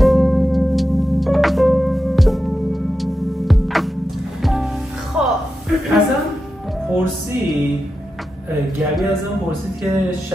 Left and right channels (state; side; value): normal; both; correlation 0.90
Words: گبی ازم پرسید که